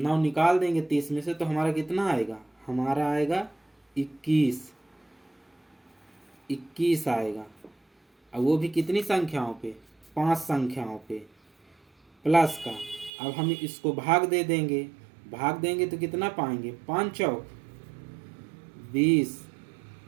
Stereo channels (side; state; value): left; drops out; at 13.1 s